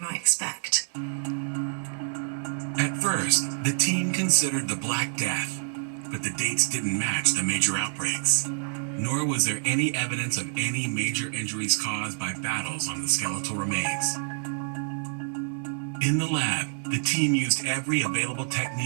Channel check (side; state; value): left; silent; digital silence